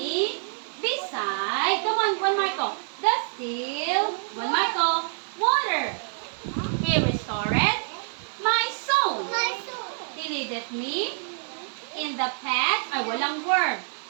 beside the one Marco. The still Marco water. He restoreth my soul. He leadeth me in the path, walang word,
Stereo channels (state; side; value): silent; left; digital silence